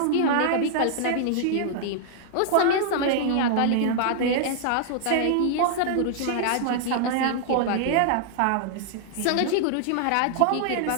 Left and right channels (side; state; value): both; different; correlation -0.01